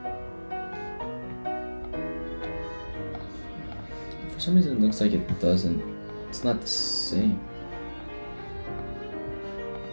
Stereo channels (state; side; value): inverted; both; correlation -1.00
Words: it looks like it doesn't. It's not the same.